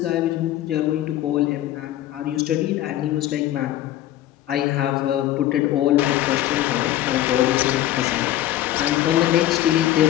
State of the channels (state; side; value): quieter; right; 13.6 dB